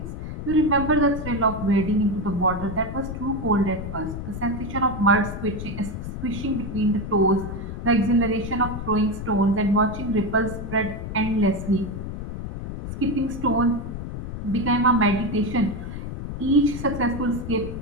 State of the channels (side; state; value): left; noise; rumble, 7 dB below the sound